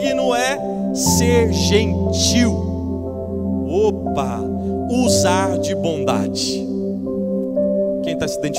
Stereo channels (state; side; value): identical; both; correlation 1.00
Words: é ser gentil. Opa, usar de bondade. Quem está se